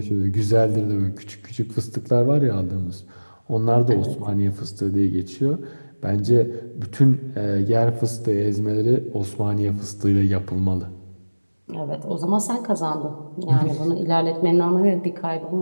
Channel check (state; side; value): inverted; both; correlation -1.00